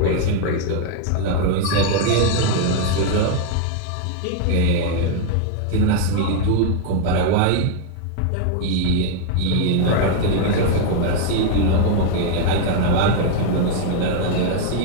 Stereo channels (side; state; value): both; different; correlation 0.00